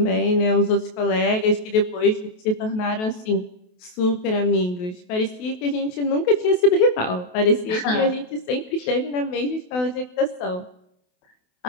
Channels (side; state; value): right; late; 28 ms